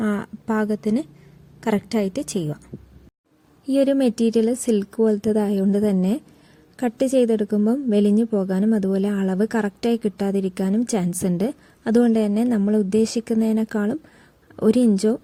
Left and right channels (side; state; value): both; identical; correlation 1.00